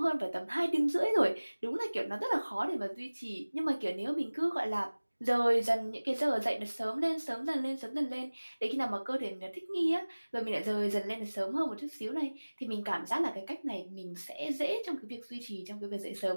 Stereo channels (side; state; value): both; inverted; correlation -1.00